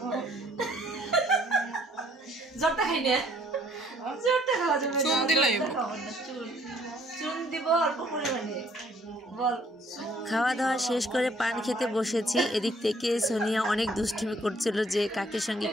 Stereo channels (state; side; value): normal; both; correlation 0.62